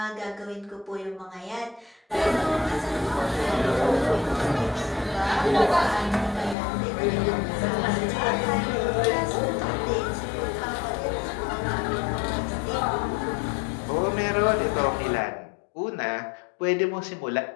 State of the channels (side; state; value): right; drops out; at 6.6 s